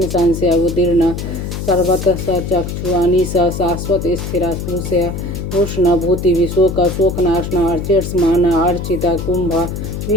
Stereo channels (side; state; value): left; noise; hum, 5 dB below the sound